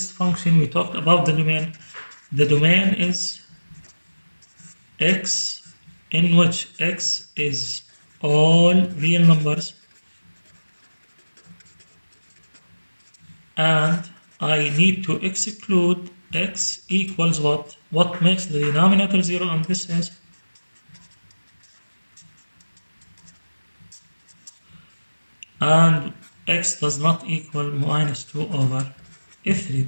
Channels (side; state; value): both; inverted; correlation -1.00